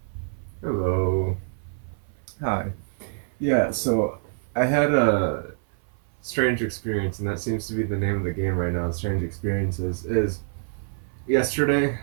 Hello. Hi. Yeah, so I had a strange experience, and that seems to be the name of the game right now, Strange Experiences. Is yesterday,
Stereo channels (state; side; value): silent; left; 58 dB below the other